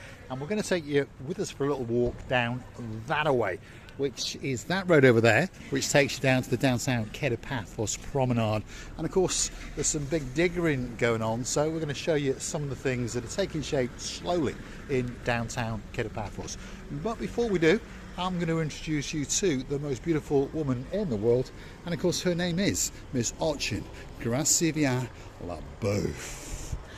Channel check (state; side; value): identical; both; correlation 1.00